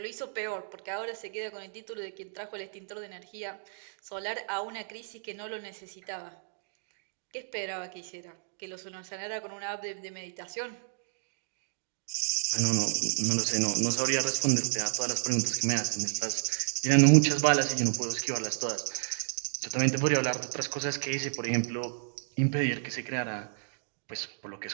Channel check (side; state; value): left; silent; digital silence